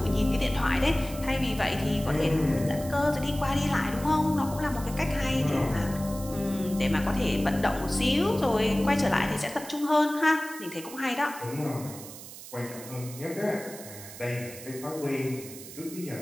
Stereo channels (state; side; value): noise; right; hiss, 14 dB below the sound